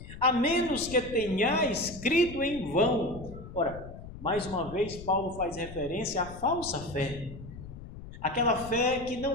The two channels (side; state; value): left; noise; rumble, 13 dB below the sound